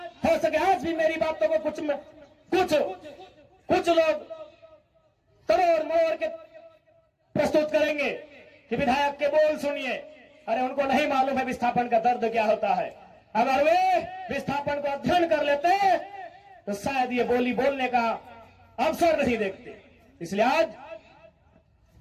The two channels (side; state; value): both; identical; correlation 1.00